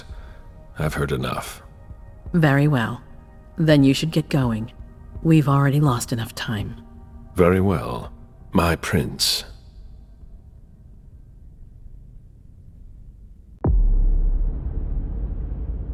I've heard enough. Very well. Then you should get going. We've already lost enough time. Very well. My prince.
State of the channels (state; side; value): identical; both; correlation 1.00